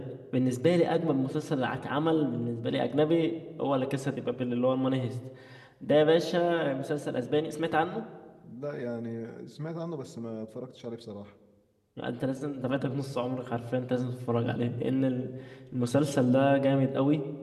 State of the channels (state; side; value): identical; both; correlation 1.00